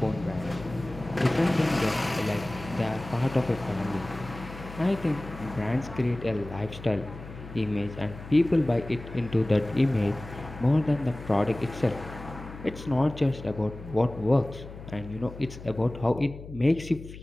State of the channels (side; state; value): left; noise; hum, 14 dB below the sound